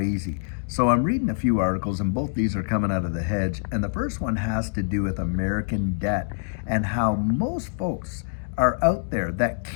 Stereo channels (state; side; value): silent; right; digital silence